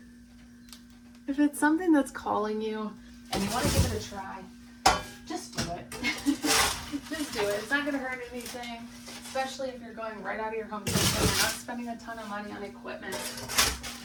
If it's something that's calling you and you want to give it a try, just do it. Just do it. It's not going to hurt anything, especially if you're going right out of your home kitchen. You're not spending a ton of money on equipment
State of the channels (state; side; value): identical; both; correlation 1.00